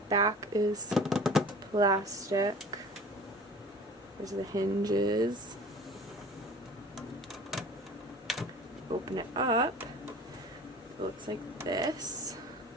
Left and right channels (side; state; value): both; normal; correlation 0.43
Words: is plastic. There's the hinges. Open it up. It looks like this.